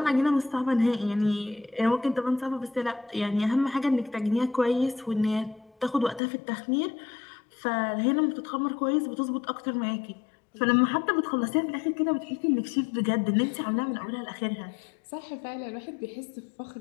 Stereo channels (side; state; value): right; drops out; at 6.2 s